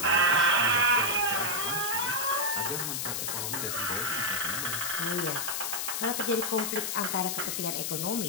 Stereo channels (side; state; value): left; noise; hiss, 1 dB below the sound